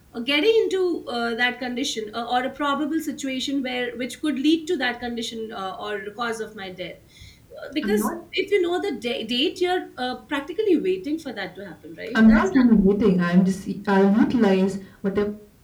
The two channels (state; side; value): identical; both; correlation 1.00